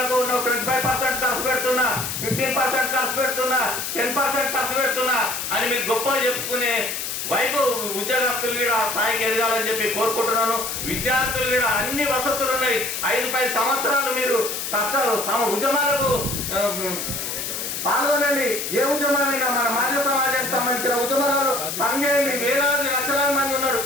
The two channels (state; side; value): noise; left; hiss, 4 dB below the sound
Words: 25% ఖర్చు పెడుతున్నా, 15% ఖర్చు పెడుతున్నా, 10% ఖర్చు పెడుతున్నా అని మీకు గొప్ప చెప్పుకునే వైపు ఉద్యోగస్తులు కూడా స్థాయికి ఎదగాలని చెప్పి కోరుకుంటున్నాను. విద్యార్థులు కూడా అన్ని వసతులు ఉన్నాయి. 5-10 సంవత్సరాలు మీరు కష్టాలు ఉద్యమాలకు పాల్గొనండి. ఏ ఉద్యమమైనా మన మానవ సమాజానికి సంబంధించిన ఉద్యమాలు పనిచేయండి. వేలాది లక్షలాది మంది ఉన్నారు.